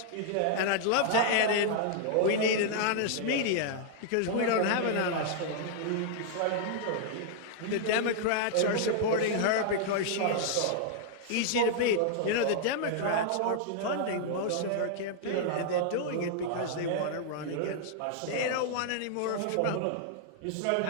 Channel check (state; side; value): different; both; correlation -0.01